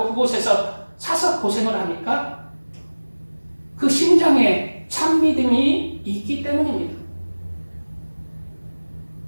그곳에서 사서 고생을 합니까? 그 심장에 참 믿음이 있기 때문입니다.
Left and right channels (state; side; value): inverted; both; correlation -1.00